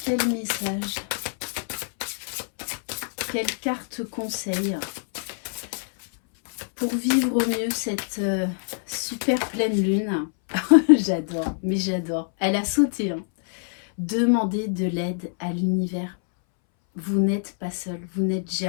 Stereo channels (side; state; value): right; silent; 62 dB below the other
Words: quel message, quelle carte conseil pour vivre au mieux cette super pleine lune. J'adore, mais j'adore. Elle a sauté. Demandez de l'aide à l'univers. Vous n'êtes pas seul, vous n'êtes